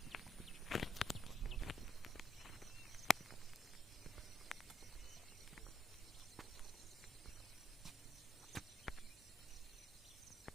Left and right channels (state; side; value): normal; both; correlation 0.74